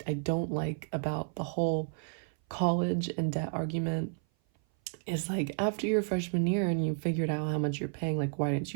don't like about the whole college and debt argument, is like, after your freshman year and you figured out how much you're paying, like, why didn't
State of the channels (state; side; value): silent; left; 55 dB below the other